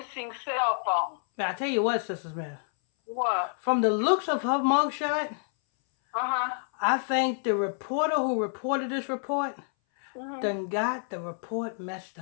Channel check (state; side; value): silent; right; 59 dB below the other